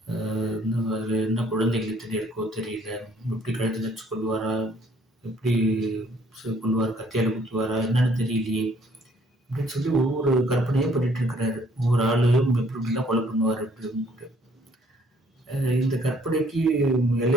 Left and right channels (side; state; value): both; normal; correlation 0.62